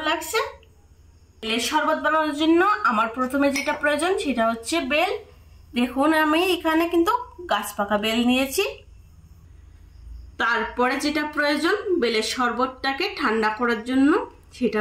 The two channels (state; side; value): identical; both; correlation 1.00